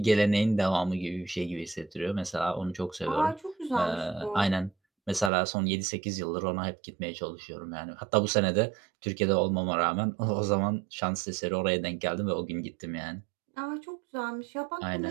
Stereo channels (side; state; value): left; drops out; at 5.3 s